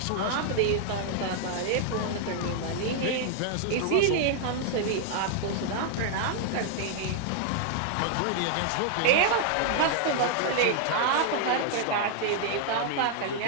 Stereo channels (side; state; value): both; different; correlation 0.00